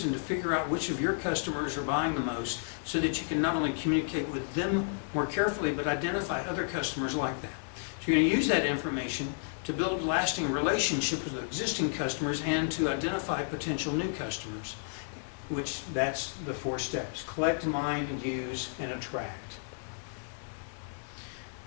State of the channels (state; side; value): silent; right; digital silence